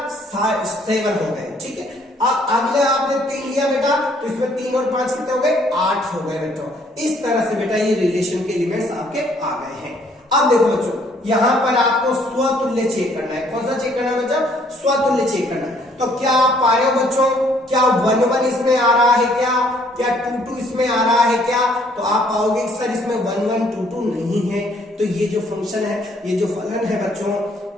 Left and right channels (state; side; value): normal; both; correlation 0.64